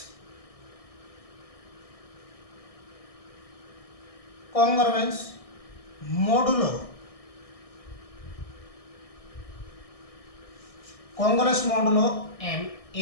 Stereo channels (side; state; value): right; late; 1.6 ms